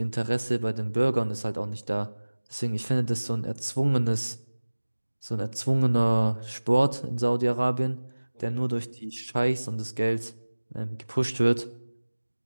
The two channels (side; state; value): both; inverted; correlation -1.00